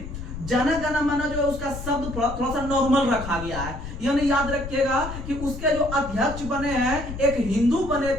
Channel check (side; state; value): left; noise; rumble, 9 dB below the sound